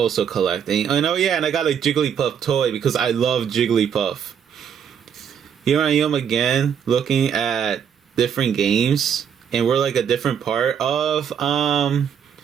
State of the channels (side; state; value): left; quieter; 8.0 dB